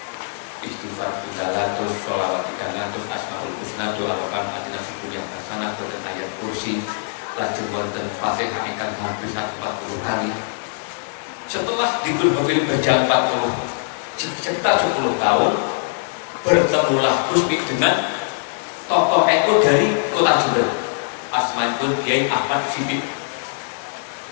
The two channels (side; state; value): right; silent; digital silence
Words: istighfar 300, sholawat 300, asmaul husna doa wakan adina fikun yang hasanah dan ayat kursi lajeng wonten Fatihah ingkang hampir 40 kali. Setelah di Growville berjalan sekitar 10 tahun, bertemulah Gusmi dengan tokoh NU dari kota Jember. Asmanipun Kiai Ahmad Siddiq.